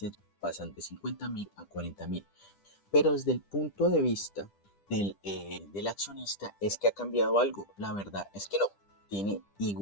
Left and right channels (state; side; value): late; right; 10 ms